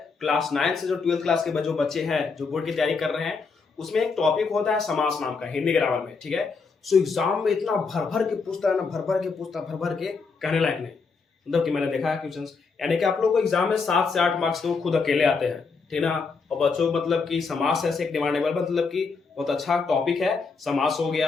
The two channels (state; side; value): quieter; right; 4.8 dB